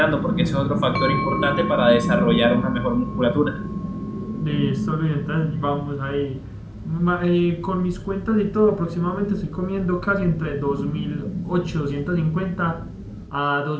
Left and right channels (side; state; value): both; identical; correlation 1.00